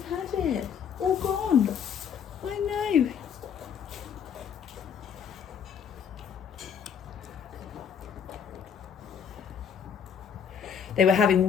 had it. All gone. I know. They were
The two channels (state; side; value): quieter; right; 7.6 dB